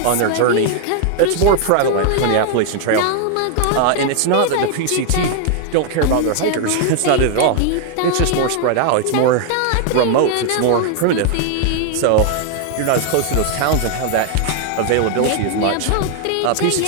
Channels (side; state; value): both; different; correlation 0.00